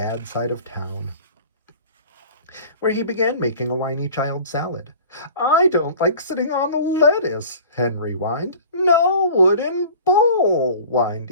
side of town, where he began making a whiny child salad. I don't like sitting on the lettuce, Henry whined. No wooden bowl, whined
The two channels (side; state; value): both; inverted; correlation -0.43